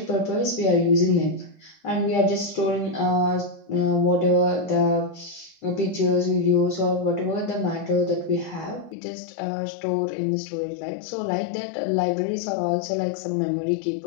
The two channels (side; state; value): right; drops out; at 9.0 s